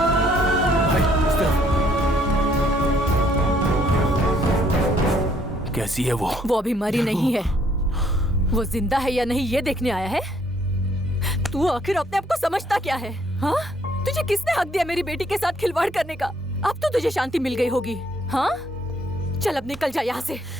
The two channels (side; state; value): both; normal; correlation 0.66